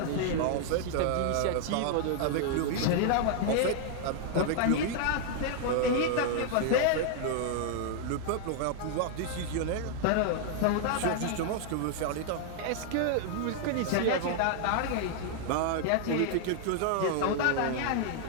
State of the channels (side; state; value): both; different; correlation -0.01